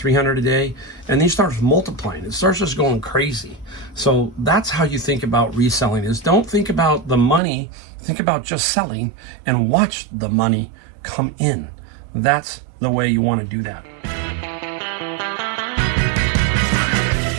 a day, and then you start multiplying. It starts just going crazy. So that's how you think about reselling is don't think about the money, think about just selling and watch the money come in. That's the way you want to do that.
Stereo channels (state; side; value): drops out; left; at 7.4 s